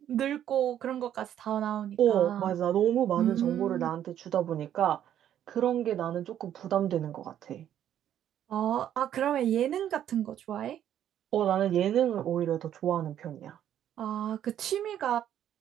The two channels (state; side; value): quieter; left; 10.7 dB